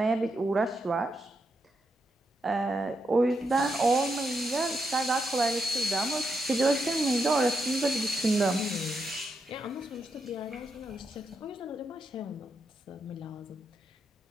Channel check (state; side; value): normal; both; correlation 0.83